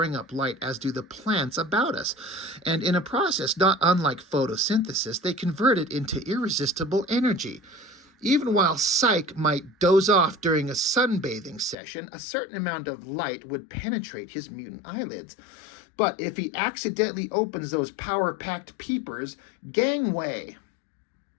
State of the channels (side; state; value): right; drops out; at 11.8 s